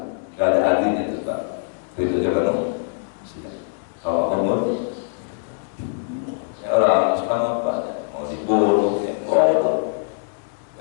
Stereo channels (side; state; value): right; silent; digital silence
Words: Gak ada artinya itu Pak. Ridho juga dong. Kalau Allah murka, ya orang sekarang apa? Mau dibunuh,